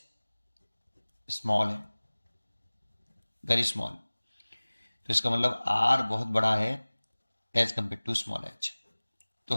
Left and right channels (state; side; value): inverted; both; correlation -1.00